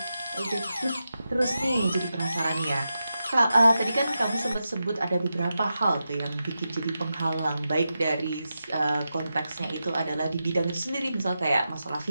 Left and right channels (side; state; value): both; inverted; correlation -0.89